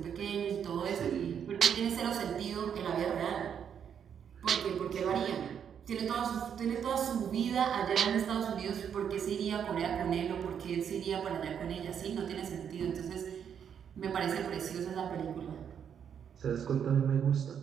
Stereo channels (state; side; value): quieter; left; 8.1 dB